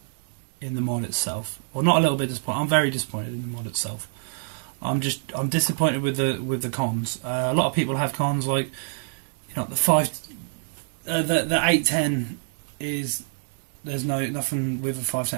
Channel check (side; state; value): left; silent; digital silence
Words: in the mod itself. Well, not a little bit disappointed. I'm very disappointed in the mod itself. I'm disappointed with the cons. A lot of people have cons like, you know, the 810 is, there's nothing with a